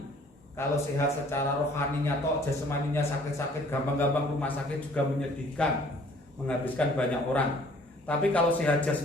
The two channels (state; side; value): normal; both; correlation 0.56